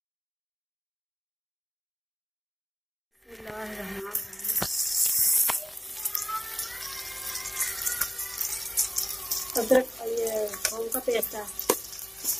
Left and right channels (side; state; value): both; identical; correlation 1.00